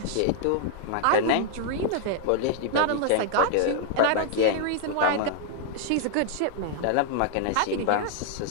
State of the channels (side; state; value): both; different; correlation -0.01